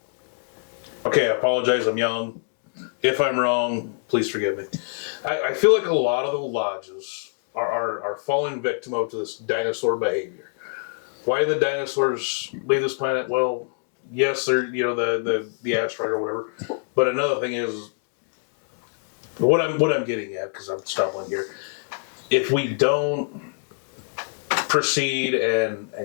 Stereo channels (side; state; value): right; silent; 62 dB below the other